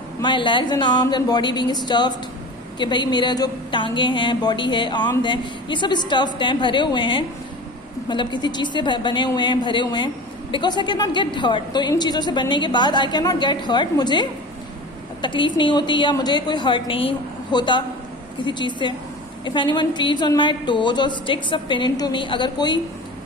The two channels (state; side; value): normal; both; correlation 0.34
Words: माई legs and arms and body being stuffed, कि भाई मेरा जो टांगे हैं, बॉडी है, आर्म्स हैं, ये सब स्टफ्ड हैं, भरे हुए हैं, मतलब किसी चीज़ से बने हुए हैं, भरे हुए हैं। Because I can not get hurt. तो इन चीज़ों से बनने के बाद I can not get hurt, मुझे तकलीफ नहीं होती या मुझे कोई हर्ट नहीं होता किसी चीज़ से। If anyone treads on my toes और sticks a pin into me, अगर कोई